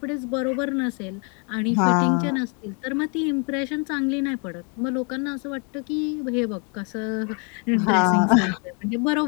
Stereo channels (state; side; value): quieter; right; 36.7 dB